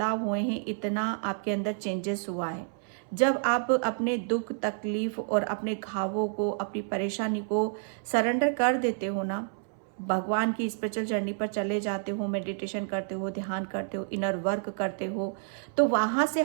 हुए हैं, इतना आपके अंदर चेंजेस हुआ है। जब आप अपने दुख तकलीफ और अपने घावों को, अपनी परेशानी को सरेंडर कर देते हो ना, भगवान की स्पिरिचुअल जर्नी पर चले जाते हो, मेडिटेशन करते हो, ध्यान करते हो, इनर वर्क करते हो, तो वहां से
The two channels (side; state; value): left; silent; 58 dB below the other